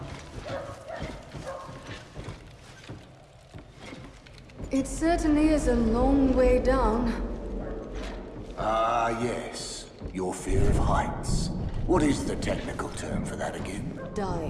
certainly is a long way down. Ah, yes. Your fear of heights. What is the technical term for that again?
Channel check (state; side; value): identical; both; correlation 1.00